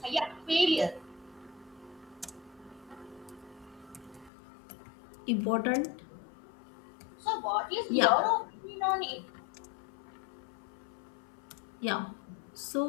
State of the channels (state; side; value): drops out; right; at 4.3 s